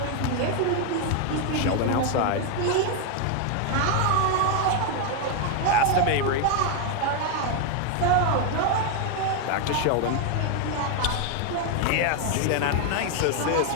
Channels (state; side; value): different; both; correlation 0.01